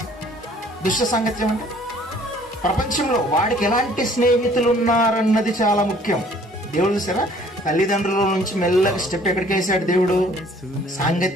దుష్ట సాంగత్యం అంటే ప్రపంచంలో వాడికి ఎలాంటి స్నేహితులు ఉన్నారన్నది చాలా ముఖ్యం. దేవుడు చూసారా, తల్లిదండ్రుల నుంచి మెల్లగా స్టెప్ ఎక్కడికి వేసాడు దేవుడు?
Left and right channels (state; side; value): normal; both; correlation 0.56